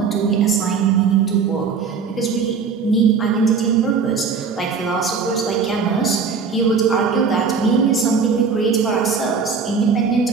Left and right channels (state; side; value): quieter; left; 5.5 dB